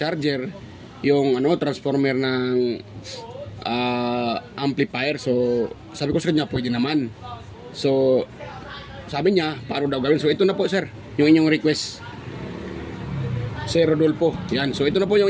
yung transformer ng amplifier. So sabi ko sa kanya pwede naman. So sabi niya paano daw gawin. So ito na po sir yung inyong request, Sir Rodolfo. Yan. So ito na po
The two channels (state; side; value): identical; both; correlation 1.00